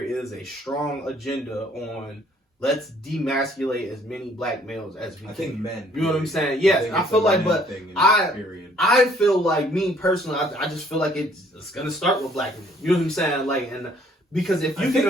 a strong agenda on let's demasculate as many black males as we can. I think men. You know what I'm saying? Yes, I feel like, but I feel like, me personally, I just feel like it's gonna start with black men. You know what I'm saying? Like, and because if you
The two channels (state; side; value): normal; both; correlation 0.61